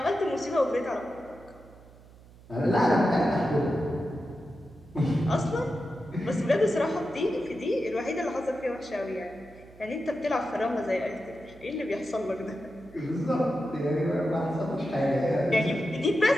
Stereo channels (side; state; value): right; noise; hum, 23 dB below the sound